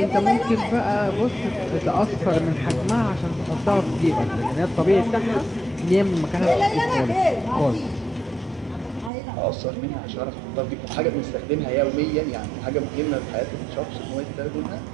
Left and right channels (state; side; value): drops out; left; at 9.1 s